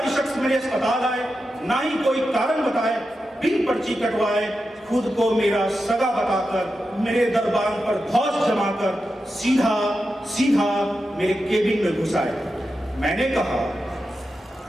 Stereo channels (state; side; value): normal; both; correlation 0.90